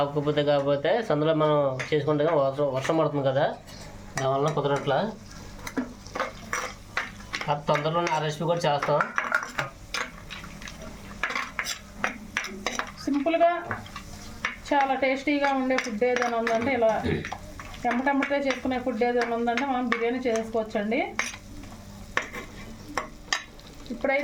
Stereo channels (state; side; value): identical; both; correlation 1.00